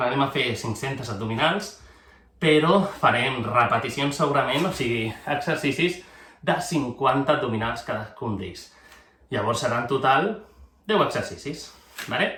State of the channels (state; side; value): identical; both; correlation 1.00